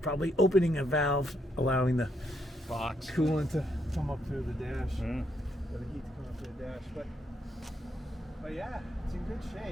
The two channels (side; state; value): both; normal; correlation 0.76